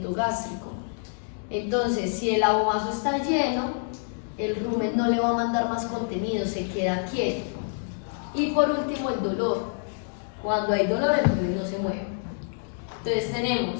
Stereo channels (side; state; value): right; silent; digital silence